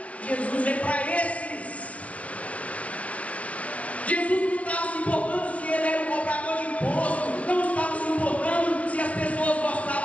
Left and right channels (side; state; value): right; late; 0.065 ms